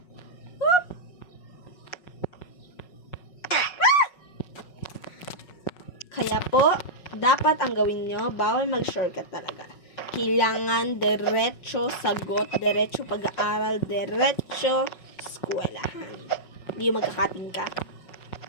Whoop! Kaya po, dapat ang gawin nyo, bawal mag-shortcut talaga. Kailangan diretso sagot, diretso pag-aaral, diretso eskwelahan. Hindi yung magkakating ka.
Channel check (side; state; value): right; late; 5.4 ms